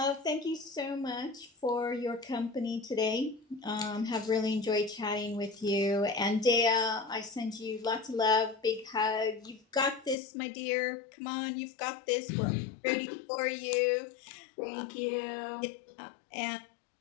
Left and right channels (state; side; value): drops out; right; at 10.2 s